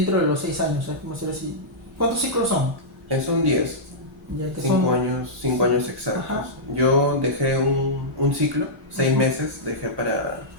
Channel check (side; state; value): both; normal; correlation -0.12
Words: de los 6 años? ¿Cómo decir así? ¿Cuántos ciclos son? Son 10. Ya que 5 años, 5 años exactos. Ajá. Yo dejé un ciclo, 6 meses, dejé